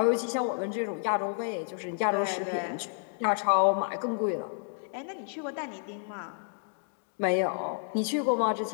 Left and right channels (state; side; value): silent; right; digital silence